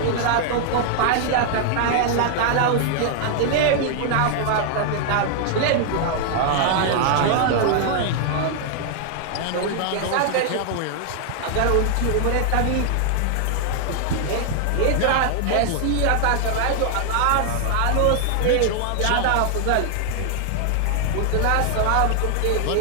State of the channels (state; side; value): different; both; correlation 0.00